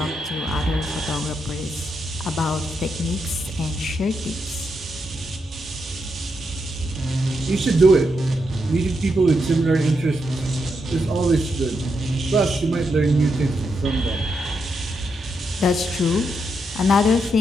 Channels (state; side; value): normal; both; correlation 0.82